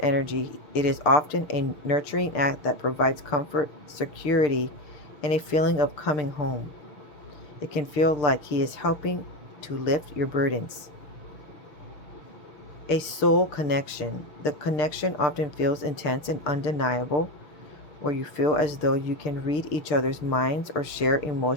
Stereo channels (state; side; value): late; right; 6.6 ms